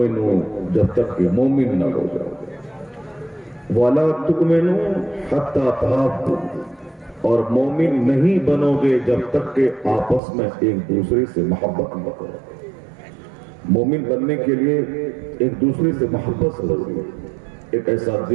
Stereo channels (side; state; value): left; drops out; at 10.2 s